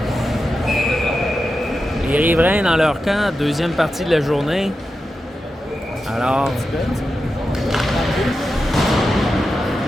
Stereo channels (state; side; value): normal; both; correlation 0.90